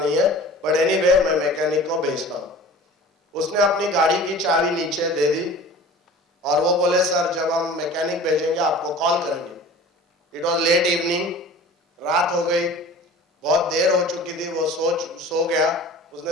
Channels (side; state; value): both; normal; correlation 0.41